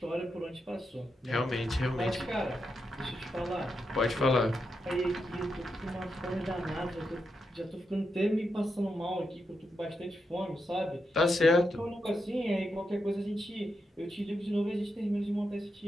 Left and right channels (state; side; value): normal; both; correlation 0.85